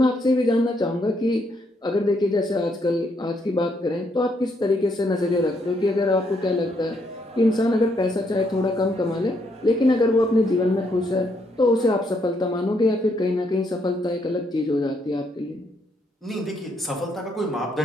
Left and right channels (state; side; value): normal; both; correlation 0.74